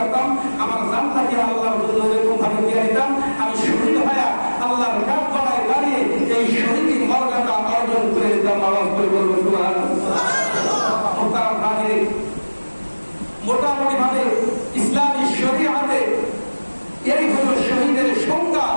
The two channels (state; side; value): inverted; both; correlation -1.00